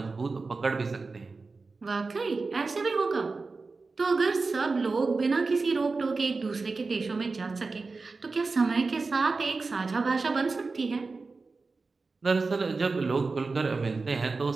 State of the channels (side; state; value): left; quieter; 4.0 dB